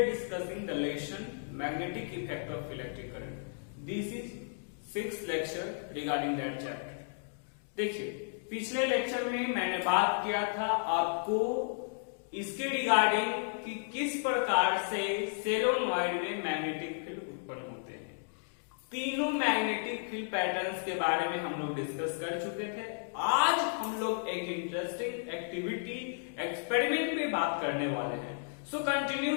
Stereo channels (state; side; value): silent; right; digital silence